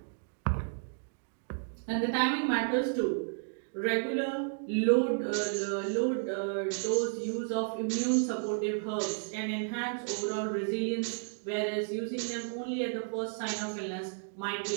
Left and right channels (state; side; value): silent; left; digital silence